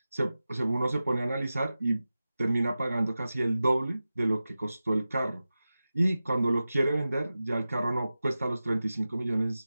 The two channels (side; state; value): both; inverted; correlation -0.94